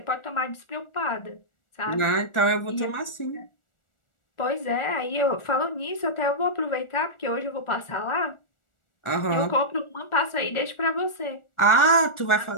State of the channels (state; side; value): late; right; 1.4 ms